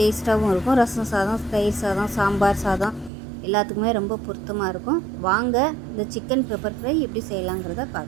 இருக்கும். ரசம் சாதம், தயிர் சாதம், சாம்பார் சாதம் எல்லாத்துக்குமே ரொம்ப பொருத்தமாக இருக்கும். வாங்க இந்த சிக்கன் பெப்பர் ஃப்ரை எப்படி செய்யலாங்கிறத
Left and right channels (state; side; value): drops out; left; at 3.1 s